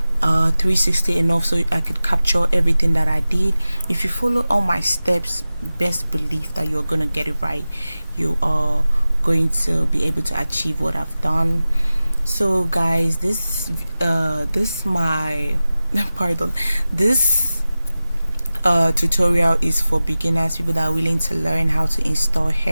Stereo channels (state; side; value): inverted; both; correlation -0.96